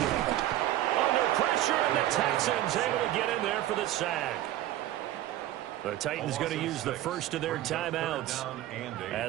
Under pressure, and the Texans able to get in there for the sack. The Titans going to use the first of their timeouts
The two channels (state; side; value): quieter; left; 13.9 dB